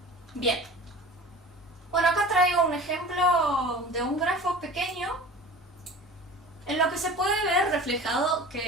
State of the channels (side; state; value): both; normal; correlation 0.39